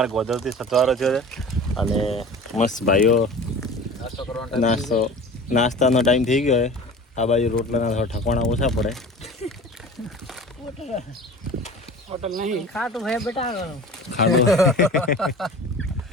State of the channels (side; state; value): both; normal; correlation 0.38